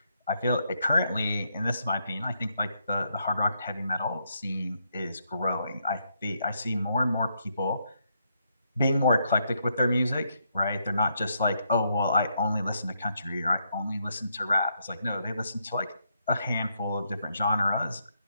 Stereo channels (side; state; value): both; inverted; correlation -0.77